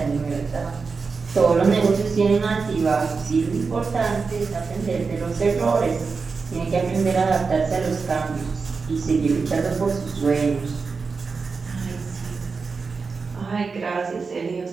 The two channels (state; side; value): quieter; left; 4.8 dB